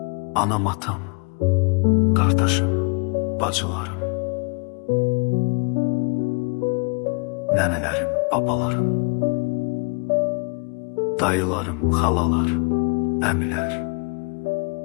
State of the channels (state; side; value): quieter; right; 33.4 dB